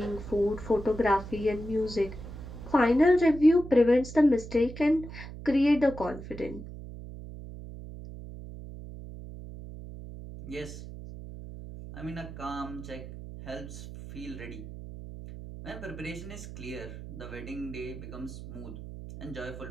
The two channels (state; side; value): noise; right; hum, 12 dB below the sound